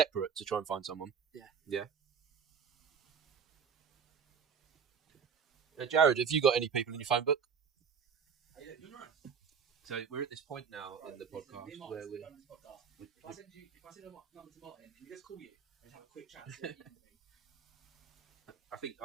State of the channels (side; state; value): left; quieter; 6.7 dB